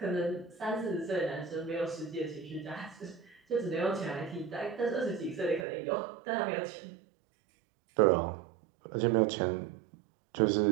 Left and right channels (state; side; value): drops out; left; at 5.7 s